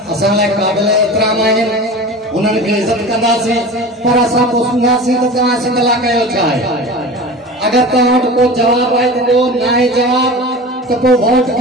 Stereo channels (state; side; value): normal; both; correlation 0.34